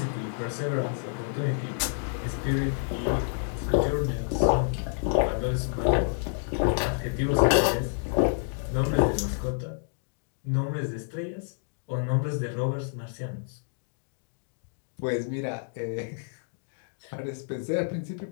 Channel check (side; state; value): right; silent; digital silence